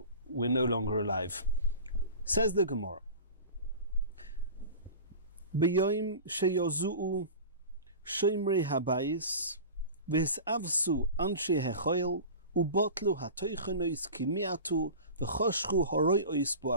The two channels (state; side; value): inverted; both; correlation -0.34